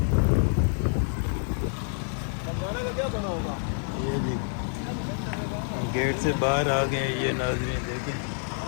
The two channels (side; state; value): right; silent; 60 dB below the other